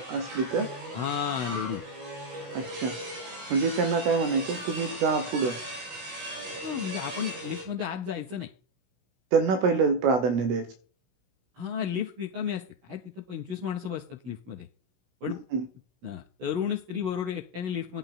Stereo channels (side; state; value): left; late; 16 ms